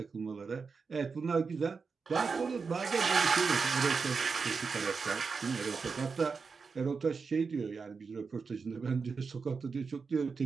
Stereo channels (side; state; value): left; quieter; 5.1 dB